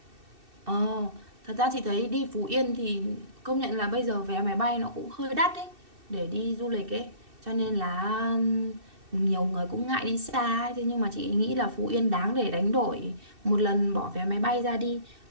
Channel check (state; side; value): late; left; 2.6 ms